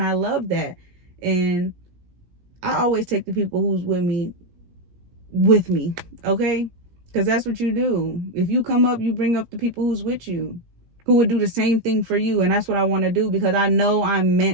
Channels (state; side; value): late; left; 17 ms